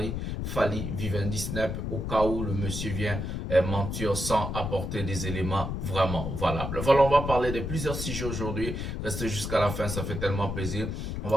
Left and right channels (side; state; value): left; noise; rumble, 4 dB below the sound